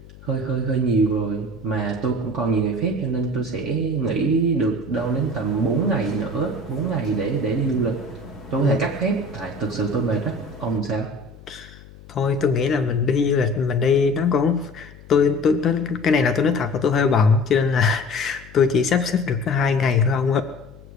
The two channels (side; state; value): left; noise; hum, 21 dB below the sound